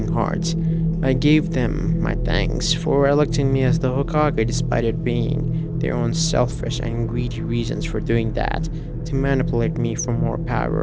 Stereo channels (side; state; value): both; identical; correlation 1.00